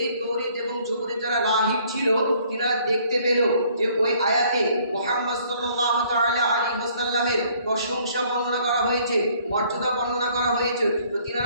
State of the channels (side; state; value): both; inverted; correlation -0.61